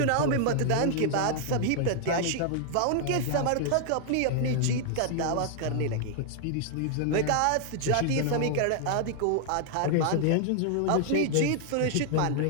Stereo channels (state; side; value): different; both; correlation 0.00